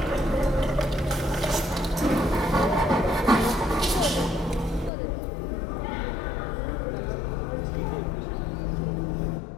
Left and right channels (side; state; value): right; drops out; at 4.9 s